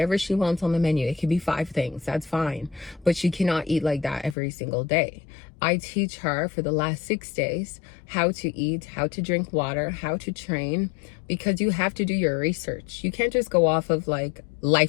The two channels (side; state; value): right; drops out; at 4.4 s